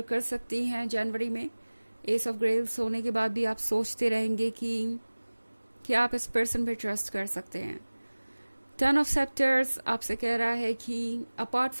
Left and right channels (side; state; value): both; inverted; correlation -1.00